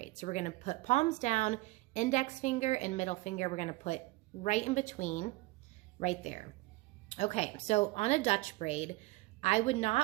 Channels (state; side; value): quieter; left; 21.4 dB